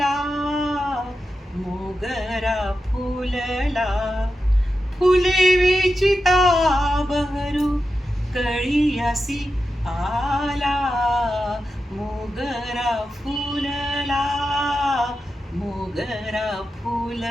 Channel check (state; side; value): normal; both; correlation 0.90